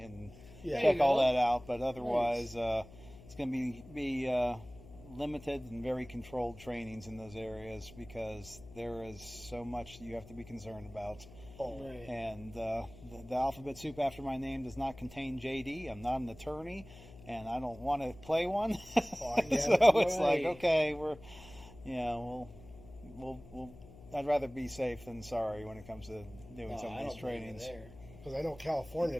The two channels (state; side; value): noise; left; hum, 19 dB below the sound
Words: check all that out. But otherwise, it's going to be limited and very controlled trainings in those areas because there is so much you have to be concerned about. Right. And the alphabet soup after my name does not contain JD. I'm not an attorney. And I don't want to play one, so it's like, okay, we'll. I'd rather be safe than sorry when it comes to doing some of these trainings. Because I know California,